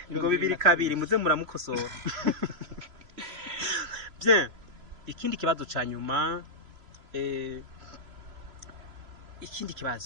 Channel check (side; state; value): left; late; 3.0 ms